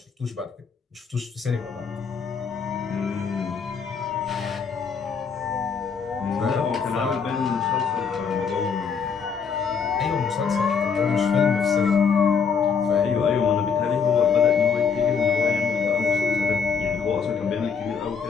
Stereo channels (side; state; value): right; quieter; 6.0 dB